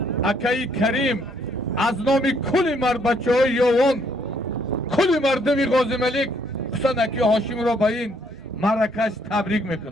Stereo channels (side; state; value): both; normal; correlation 0.68